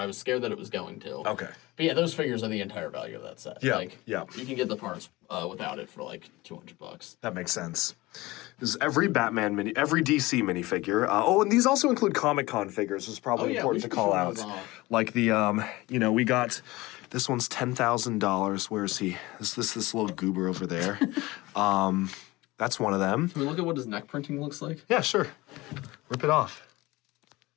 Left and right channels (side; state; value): right; quieter; 20.6 dB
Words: I was scared that it was going to. Okay. But yeah, those figures are the entire value of that set. Yeah, Like, yeah. You can get the parts without it for like $200. That makes sense. There's every every DC minifigure. And these also include Comic-Con figures, which is probably we important to should call show out. those off. Like the, we got, this one's $10,000. Where is he? This little goober over there. That's one of them. Can we look at what his neck printing looks like? Yeah, sure. Rip it off.